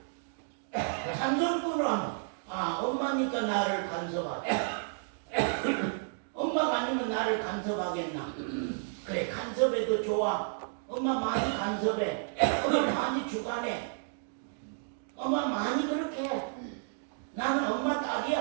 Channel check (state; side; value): silent; left; digital silence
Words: 잔소리꾼으로 안 봐. 아, 엄마니까 나를 간섭하지. 엄마가 아니면 나를 간섭하겠나? 그래, 간섭해도 좋아. 엄마 많이 간섭해. 엄마 많이 주관해. 엄마 많이 그렇게 해. 나는 엄마